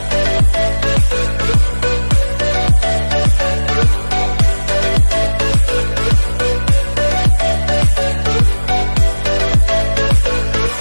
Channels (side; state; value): both; inverted; correlation -1.00